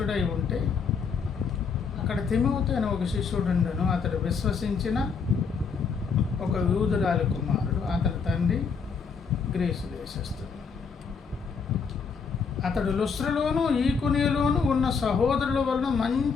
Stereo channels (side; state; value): right; quieter; 5.6 dB